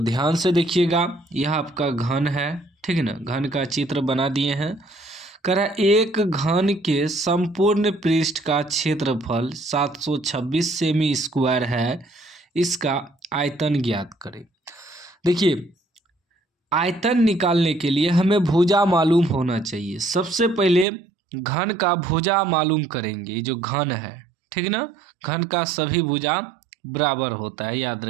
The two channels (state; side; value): drops out; left; at 20.9 s